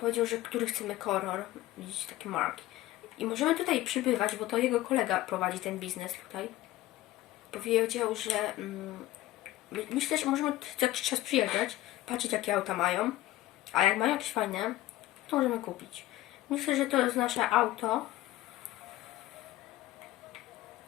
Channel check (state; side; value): quieter; right; 15.9 dB